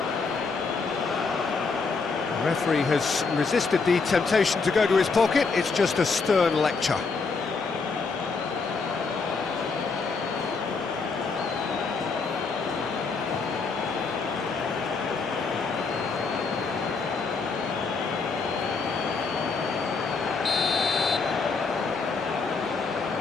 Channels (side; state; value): right; quieter; 4.5 dB